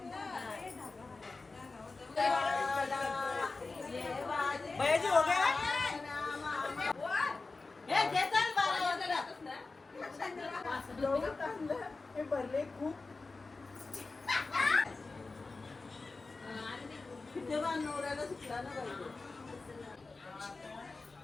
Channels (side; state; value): right; quieter; 3.8 dB